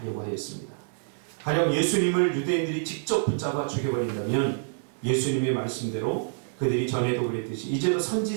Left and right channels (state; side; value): silent; left; digital silence